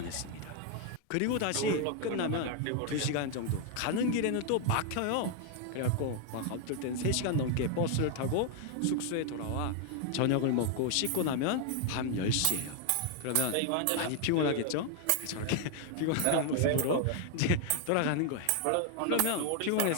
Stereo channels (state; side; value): different; both; correlation 0.01